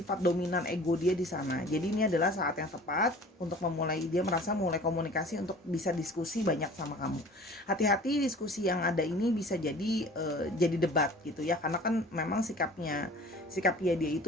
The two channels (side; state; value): both; normal; correlation 0.45